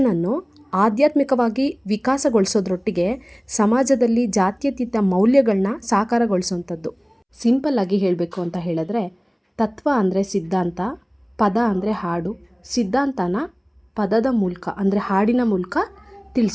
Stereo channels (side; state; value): both; identical; correlation 1.00